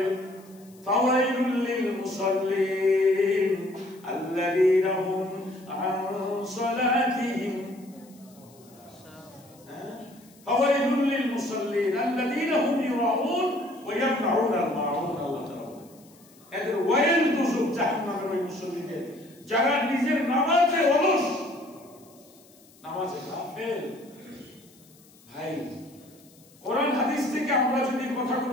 ফাওয়াইলুল লিল মুসাল্লিন আল্লাযীনা হুম আন সালাতিহিম, ফাওয়াইলুল লিল মুসাল্লিন আল্লাযীনা হুম ইউরাউন ওয়া ইয়ামনাউন আল মাউন। আল্লাহ তাআলা এদের ওয়াইল দুজক, জাহান্নামের ওই মুসল্লিদের যারা নিজের নামাজে অলস, নামাজে গাফেল। ভাই, কোরআন হাদিস থেকে আমরা যদি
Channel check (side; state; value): left; noise; hiss, 27 dB below the sound